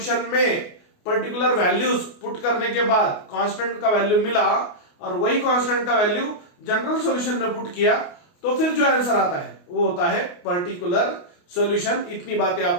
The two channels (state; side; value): late; right; 29 ms